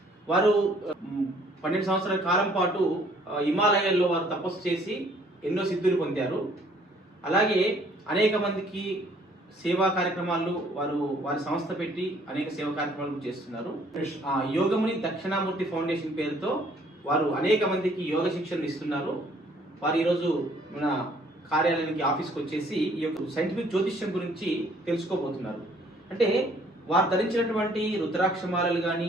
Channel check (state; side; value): normal; both; correlation 0.61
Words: వారు 12 సంవత్సరాల కాలం పాటు హిమాలయాల్లో వారు తపస్సు చేసి ఎన్నో సిద్ధులు పొందారు. అలాగే అనేక మందికి సేవా కార్యక్రమాలు వారి సంస్థ పెట్టి అనేక సేవా కార్యక్రమాలు చేస్తున్నారు. యోగముని దక్షిణామూర్తి ఫౌండేషన్ పేరుతో వారు అనేక మందికి యోగ శిక్షణ ఇస్తున్నారు. వారు ఈరోజు మన కార్యాలయానికి ఆఫీస్కి వచ్చేసి ఈ యొక్క సైంటిఫిక్ జ్యోతిష్యం గురించి తెలుసుకోబోతున్నారు. అంటే వారు ధరించినటువంటి రుద్రాక్షమాలలు